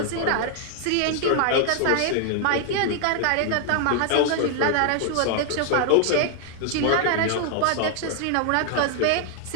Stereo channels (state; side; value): different; both; correlation 0.00